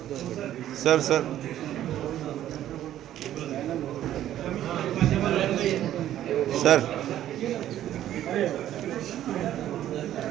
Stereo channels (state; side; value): quieter; left; 12.2 dB